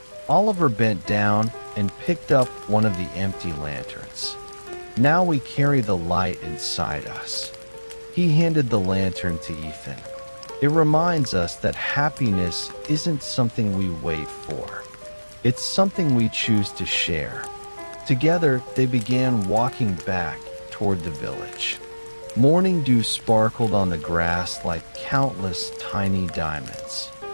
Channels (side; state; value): both; inverted; correlation -1.00